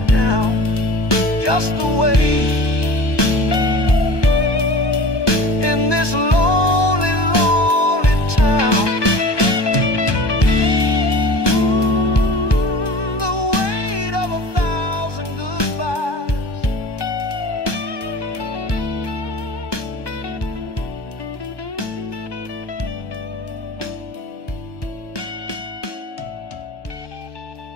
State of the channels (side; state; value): right; late; 1.2 ms